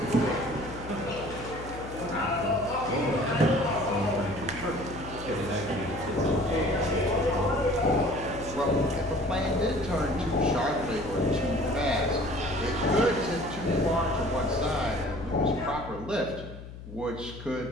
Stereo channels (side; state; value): left; noise; hum, 13 dB below the sound